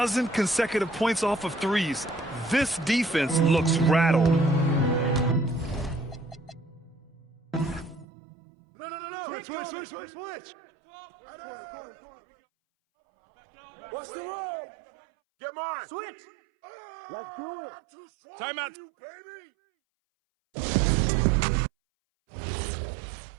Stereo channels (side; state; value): left; drops out; at 8.1 s